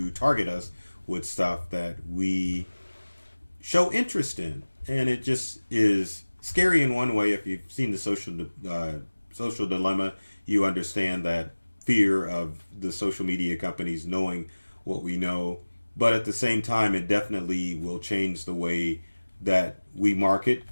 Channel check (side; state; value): both; inverted; correlation -1.00